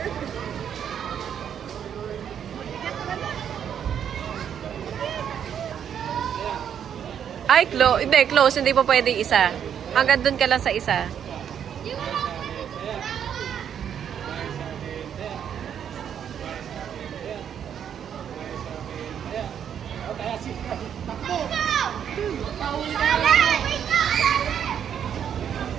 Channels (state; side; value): quieter; left; 8.7 dB